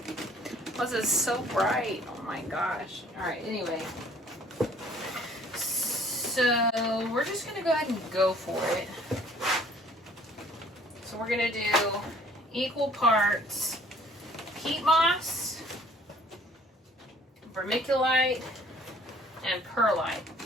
Plus it's so bright. Oh my gosh. Alright, anyway. So we're just going to go ahead and go for it. So we're going to do equal parts peat moss, vermiculite, and perlite.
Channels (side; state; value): both; normal; correlation 0.57